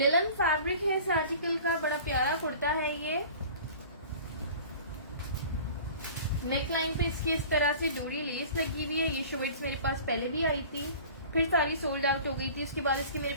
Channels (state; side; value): inverted; both; correlation -0.43